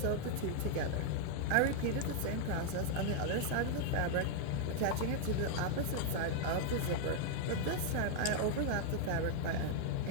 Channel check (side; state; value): both; different; correlation 0.00